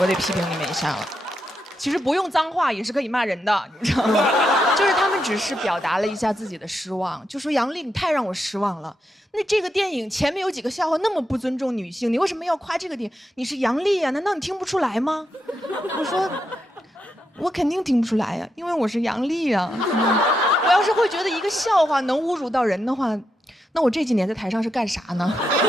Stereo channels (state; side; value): normal; both; correlation 0.84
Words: 得批评你们一下了。其实不用脏话也是可以骂人的，你知道吗？就是他们只是表达了一下自己的失望，就说杨丽你太让我失望了。那这个电影前面有几个笑话那么不尊重女性，你为什么要夸这个电影？你是杨丽啊，难道你听不出来吗？我说，我肯定听不出来呀，因为我是杨丽啊。我要是会觉得一个笑话能侮辱到人的话，那我这几年在台上是干啥呢？